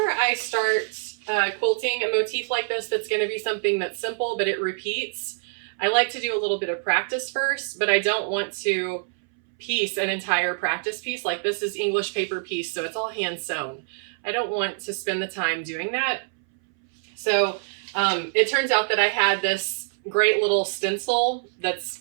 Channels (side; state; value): left; silent; 62 dB below the other